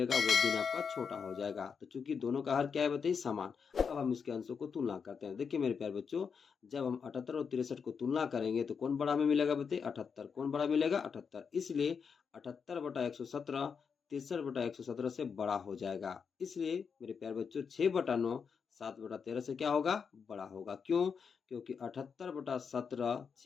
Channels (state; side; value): quieter; right; 6.2 dB